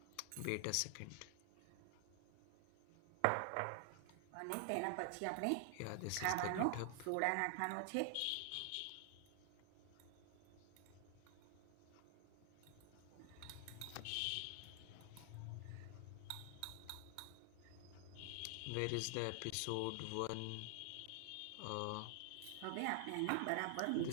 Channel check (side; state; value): both; different; correlation 0.00